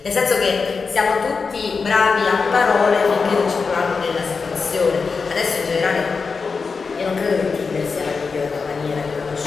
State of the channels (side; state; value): right; quieter; 4.9 dB